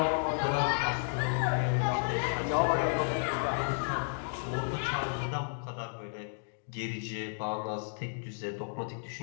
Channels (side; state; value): right; silent; digital silence